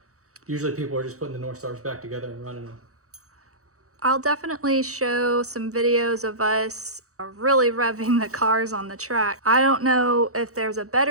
Usually people are just putting the Northstars back together and running them. I'll definitely show some videos of us really revving the cars on the track. I don't know if there's a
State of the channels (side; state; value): left; late; 0.65 ms